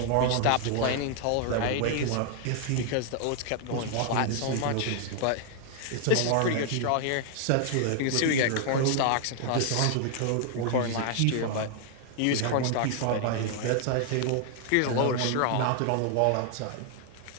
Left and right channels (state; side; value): different; both; correlation 0.00